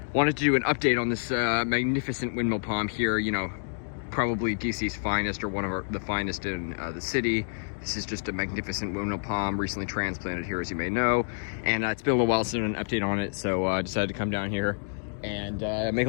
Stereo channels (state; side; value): silent; right; digital silence